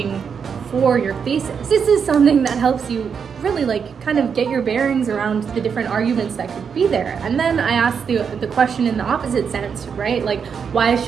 for your thesis. This is something that helps you really kind of get your bearings around the different arguments that could be there. And then I asked the question in the opposite sense, right? Like, why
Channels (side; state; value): left; quieter; 6.6 dB